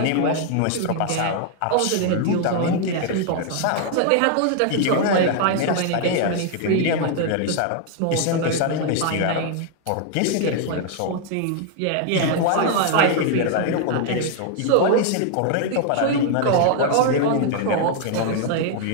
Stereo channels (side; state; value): both; different; correlation 0.00